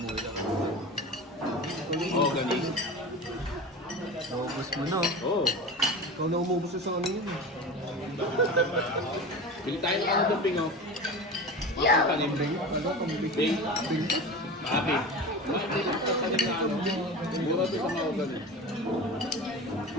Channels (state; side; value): normal; both; correlation 0.30